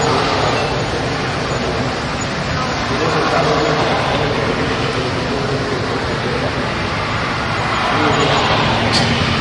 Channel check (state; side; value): identical; both; correlation 1.00